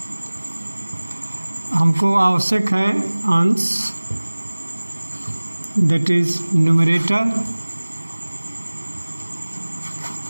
हमको आवश्यक है अंश, that is numerator,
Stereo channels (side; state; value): both; inverted; correlation -1.00